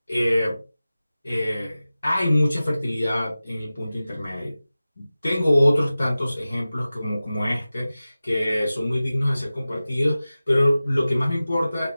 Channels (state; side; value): inverted; both; correlation -0.96